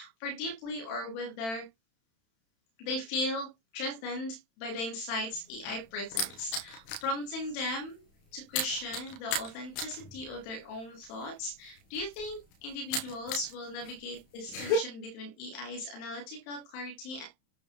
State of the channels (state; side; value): late; right; 31 ms